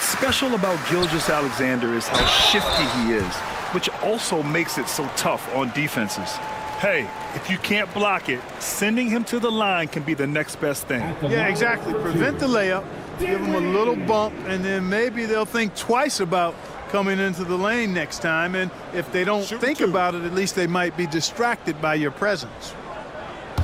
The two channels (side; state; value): both; identical; correlation 1.00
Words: special about Gilgeous-Alexander is how shifty he is, which also makes it so tough on defenses. Hey, if you can't block it, sending him to the line can be the next best thing. Yeah, exactly. Prevent the layup, give him a little bump, and then maybe they'll think twice about coming into the lane next time. And if they don't think about it, at least they might be distracted by your presence.